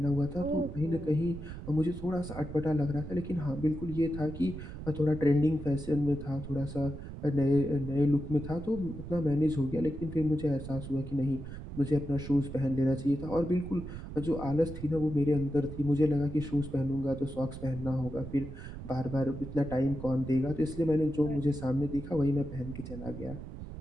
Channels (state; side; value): noise; right; rumble, 10 dB below the sound